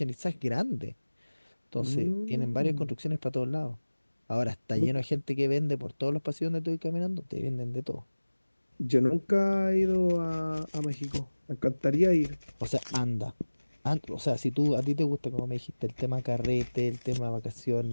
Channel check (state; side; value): inverted; both; correlation -1.00